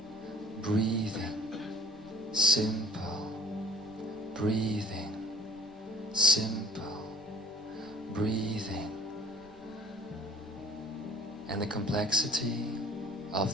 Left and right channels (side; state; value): both; normal; correlation 0.51